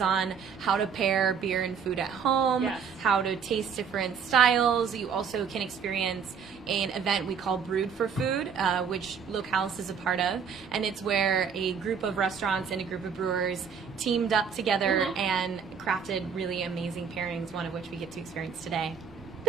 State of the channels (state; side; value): quieter; left; 6.7 dB